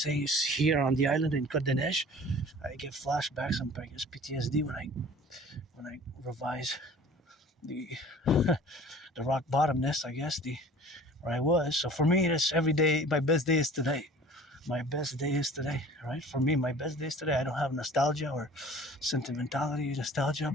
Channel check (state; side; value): normal; both; correlation 0.46